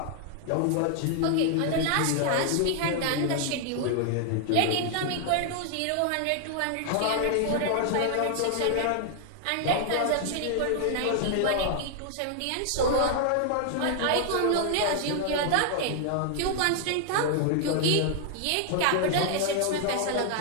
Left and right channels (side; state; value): both; different; correlation 0.00